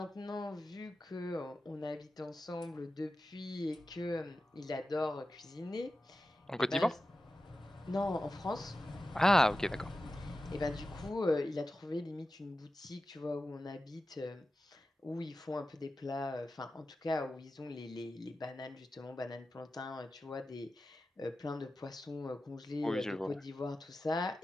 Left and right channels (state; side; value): normal; both; correlation 0.93